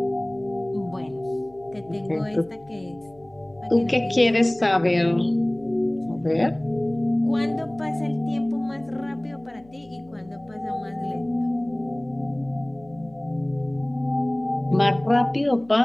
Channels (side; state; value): left; noise; hum, 27 dB below the sound